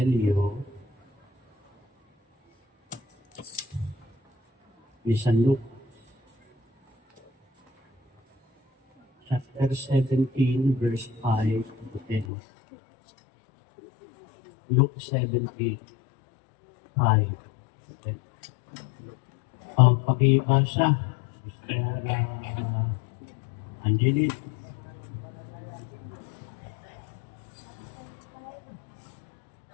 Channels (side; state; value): right; drops out; at 12.2 s